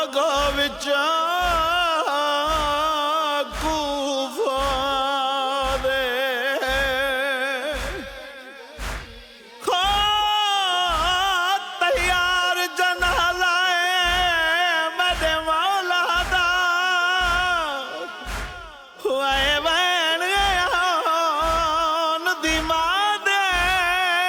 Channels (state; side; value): identical; both; correlation 1.00